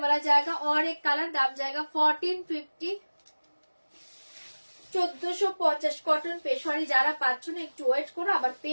जाएगा, और एक कलर, दाम जाएगा 1450 1450। কটন পেশোয়ারি যারা পাচ্ছ না একটু ওয়েট করো, আবার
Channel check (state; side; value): inverted; both; correlation -1.00